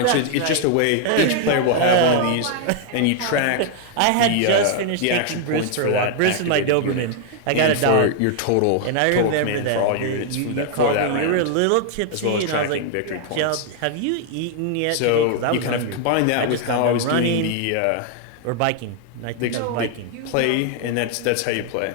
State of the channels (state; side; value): different; both; correlation 0.00